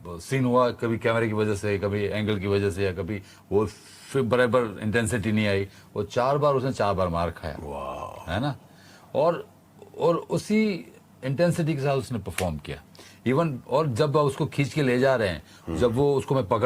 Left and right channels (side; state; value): both; identical; correlation 1.00